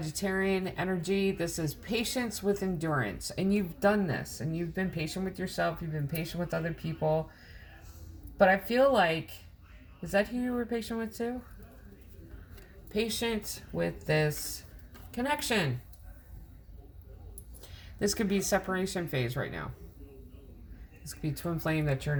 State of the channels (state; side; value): identical; both; correlation 1.00